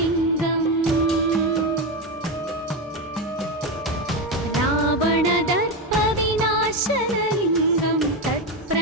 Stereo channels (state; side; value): normal; both; correlation 0.13